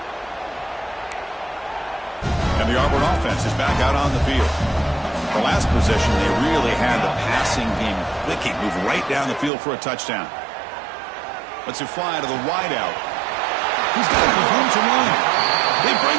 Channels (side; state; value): left; drops out; at 9.5 s